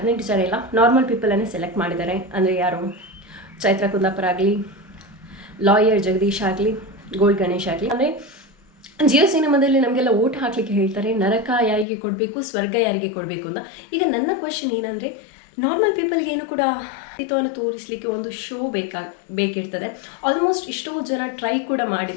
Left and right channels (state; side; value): drops out; right; at 11.9 s